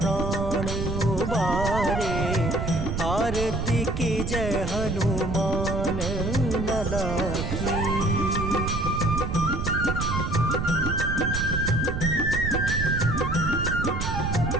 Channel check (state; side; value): noise; right; rumble, 2 dB below the sound